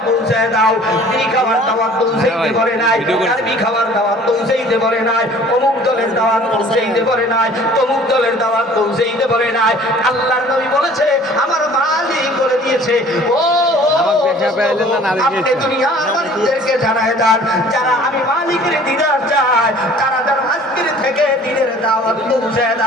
বলছে পৌঁছায় দাও। বিড়ি খাওয়ার দাওয়াত পৌঁছাইতে পারে নাই, আরবি খাওয়ার দাওয়াত পৌঁছাইতে পারে নাই, অমুক দলের দাওয়াত পৌঁছাইতে পারে নাই, তমুক দলের দাওয়াত পৌঁছাইতে পারে নাই। আল্লাহর নবী বলেছে আমার মালিক বলে দিয়েছে, ও আপনি দুনিয়ার মানুষদেরকে জানায় দেন যারা আমি মালিকের দিদার চাই তারা যেন আজকের থেকে দিনের দাওয়াত পৌঁছায়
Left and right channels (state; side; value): normal; both; correlation 0.50